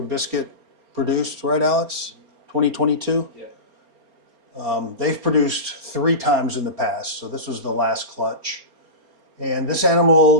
Biscuit produced, right, Alex? 2022? Yeah. They've produced 3 times in the past, so this was the last clutch. And this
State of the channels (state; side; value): late; left; 4.3 ms